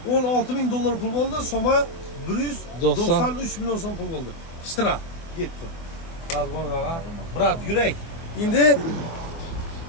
16 ming dollar pul bo'ldi. Soma 193 million so'm pul bo'ldi. Ishtirak ketdi. Hozir bo'lmaga. Brat, yurak. Endi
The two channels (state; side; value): late; right; 24 ms